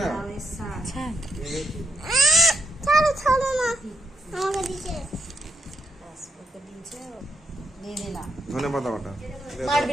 না? লাউয়ের শাক ওকে দিয়ে দিলাম। ধনে পাতা বাটা। মারবি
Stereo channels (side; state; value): both; normal; correlation 0.79